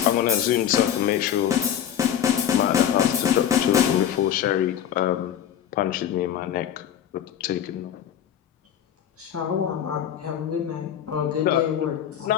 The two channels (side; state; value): right; quieter; 9.8 dB